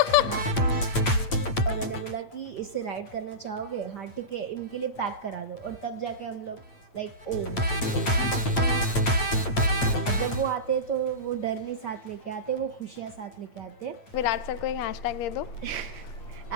और मैंने बोला कि इससे राइड करना चाहोगे, हाँ ठीक है, इनके लिए पैक करा दो। और तब जाके हम लोग लाइक ओ, जब वो आते तो वो डर नहीं साथ लेके आते, वो खुशियाँ साथ लेके आते। विराट सर को एक हैशटैग दे दो।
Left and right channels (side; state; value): right; late; 8.7 ms